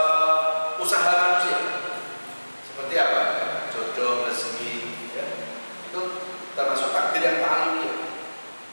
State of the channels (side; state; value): both; inverted; correlation -1.00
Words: usaha manusia. Seperti apa? Jodoh, rezeki, ya. Itu termasuk takdir yang ta'alluqiyah.